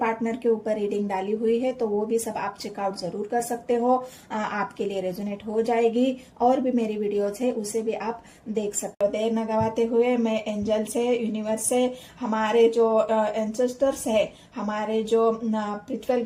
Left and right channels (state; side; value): identical; both; correlation 1.00